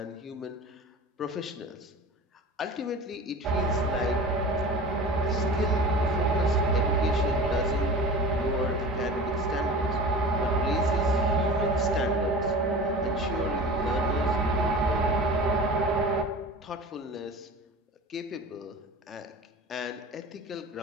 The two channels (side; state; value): both; normal; correlation 0.36